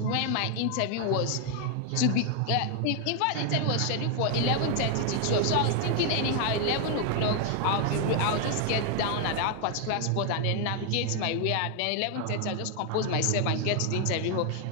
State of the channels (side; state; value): both; different; correlation 0.00